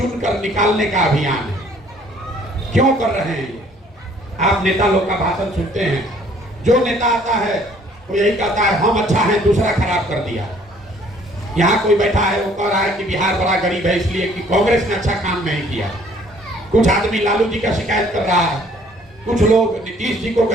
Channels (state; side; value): normal; both; correlation 0.59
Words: निकालने का अभियान है। क्यों कर रहे हैं ये? आप नेता लोग का भाषण सुनते हैं, जो नेता आता है वो यही कहता है हम अच्छा है, दूसरा खराब कर दिया। यहाँ कोई बैठा है वो कह रहा है कि बिहार बड़ा गरीब है इसलिए कि कांग्रेस ने अच्छा काम नहीं किया। कुछ आदमी लालू जी का शिकायत कर रहा है, कुछ लोग नीतीश जी को